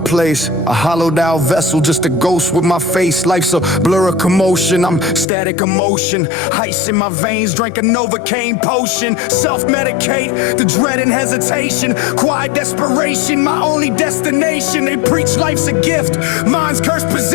a hollowed out vessel, just a ghost with my face. Life's a blur of commotion, I'm static emotion. Ice in my veins, drank a Novocaine potion. Self-medicate, the dread and hesitation. Quiet desperation, my only destination. They preach life's a gift, mine's cursed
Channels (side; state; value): right; drops out; at 5.2 s